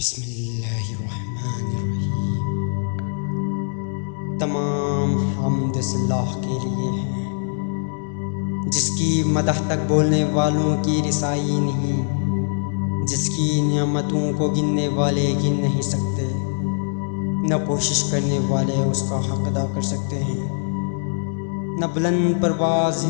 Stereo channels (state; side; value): silent; right; 64 dB below the other